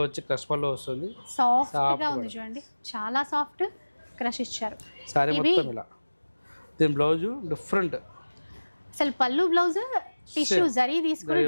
వచ్చి క్రష్ పళ్ళు వస్తుంది, సాఫ్ట్ గా ఉంది చూడండి, చాలా సాఫ్ట్ క్రష్ ఇచ్చారు. సారీ మొత్తం ఇలా. దీని బ్లౌజ్ డిఫరెంట్, అసలు పళ్ళు బ్లౌజ్ టిష్యూ జరీ తీసుకుని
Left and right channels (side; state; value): both; inverted; correlation -1.00